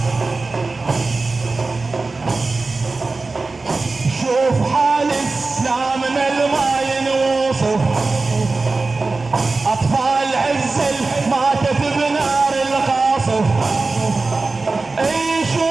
شوف حالك لا من الماء ينوصف أطفال عزل ماتت بنار القاصف اي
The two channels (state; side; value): quieter; left; 3.7 dB